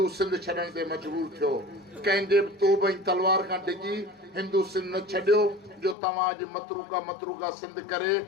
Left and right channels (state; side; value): drops out; right; at 6.0 s